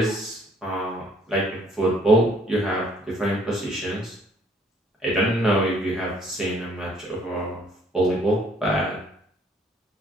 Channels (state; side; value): normal; both; correlation 0.61